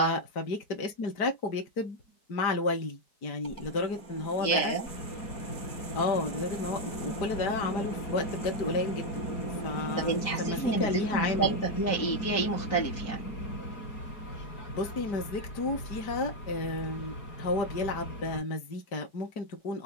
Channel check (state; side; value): late; right; 4.6 ms